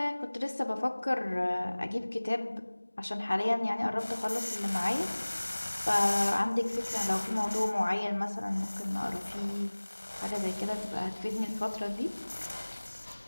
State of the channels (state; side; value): inverted; both; correlation -1.00